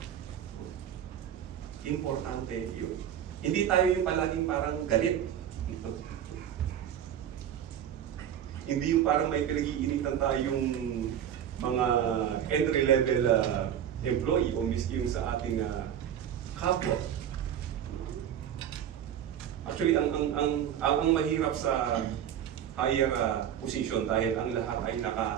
Importante yun. Hindi tayo yung palaging parang galit. Hindi yung parang may pinag-iinitan tayong mga entry-level employee o miski yung sa ating kapwa. Actually, ang mahirap sa higher position dahil ang lahat ay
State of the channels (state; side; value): quieter; left; 9.7 dB